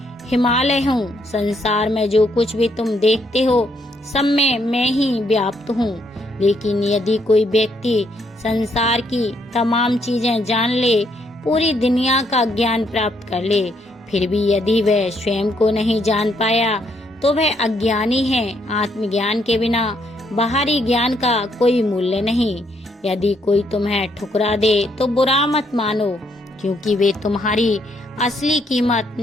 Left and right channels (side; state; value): both; normal; correlation 0.73